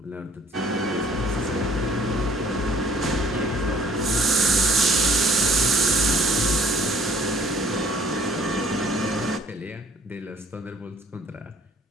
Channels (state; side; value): normal; both; correlation 0.57